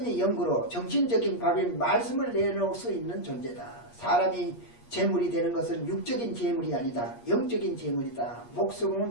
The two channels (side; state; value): right; late; 8.5 ms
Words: 연구로 정신적인 밥인 말씀을 내놓을 수 있는 존재다. 사람이 재물이 되는 것은 육적인 재물이 아니다. 영적인 재물이다.